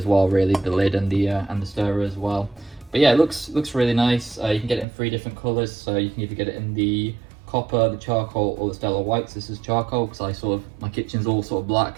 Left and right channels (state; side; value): drops out; left; at 4.9 s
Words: well, really, the lid and the stirrer as well. But yeah, it looks really nice. You can get it in 3 different colors, so you can either get it in the copper, the charcoal, or the stellar whites. This is charcoal because my kitchen's all sort of black,